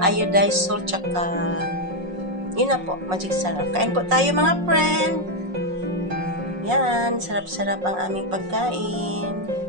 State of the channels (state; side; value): late; left; 5.5 ms